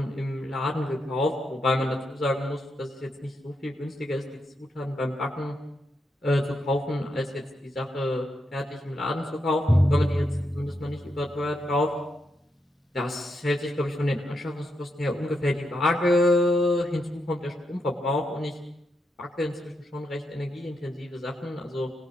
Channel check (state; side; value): normal; both; correlation 0.83